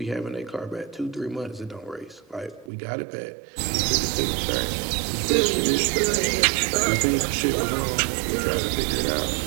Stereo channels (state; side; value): drops out; left; at 2.7 s